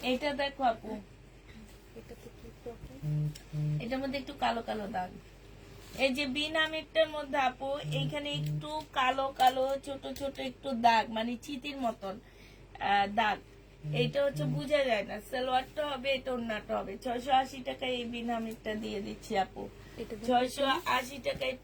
এটা দেখো আপু, এটার মধ্যে একটু কালো কালো দাগ। এই যে বিনামিরটার মধ্যে আপু, এইখানে একটু কালো কালো ছোট ছোট একটু দাগ, মানে চিতির মতন দাগ। এইটা হচ্ছে বোঝা যায় না। সালোয়ারটা হবে, এটা ওড়নাটা হবে। 680 টাকায় এই বিনামিরটা দিয়ে দিচ্ছি আপু, 680 টাকায়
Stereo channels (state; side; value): identical; both; correlation 1.00